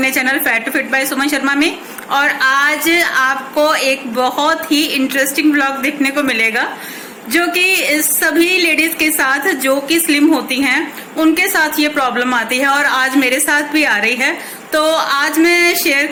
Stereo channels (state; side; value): identical; both; correlation 1.00